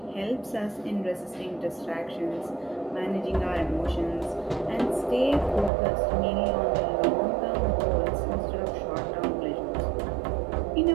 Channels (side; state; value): left; drops out; at 5.7 s